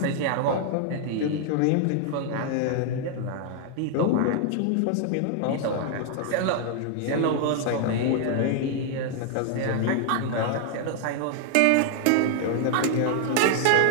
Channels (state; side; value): different; both; correlation 0.00